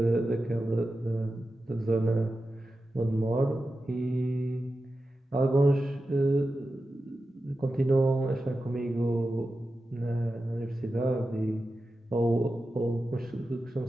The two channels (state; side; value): normal; both; correlation 0.92